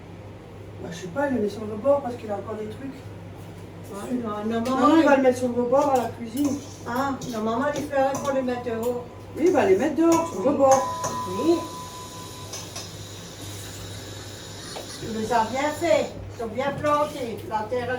Bah, je sais pas, il le met sur le bord parce qu'il a encore des trucs. Ouais, non, Non, maman, il va le mettre sur le rebord à la cuisine. Ah, non, maman, les fleurs, il faut les mettre dehors. Oui, il va les mettre dehors, sur le rebord. Oui. Tu les as bien fait. Ils sont bien plantés. La terre,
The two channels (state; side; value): identical; both; correlation 1.00